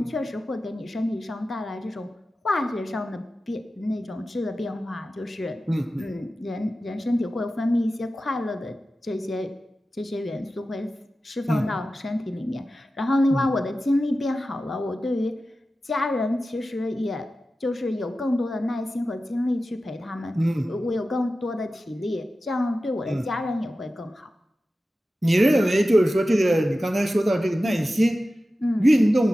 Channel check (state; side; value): normal; both; correlation 0.94